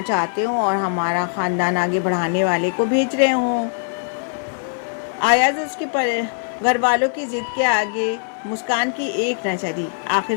चाहते हों और हमारा ख़ानदान आगे बढ़ाने वाले को भेज रहे हों। अयाज उसके घर वालों की ज़िद के आगे मुस्कान की एक न चली। आखिर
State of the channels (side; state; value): right; silent; digital silence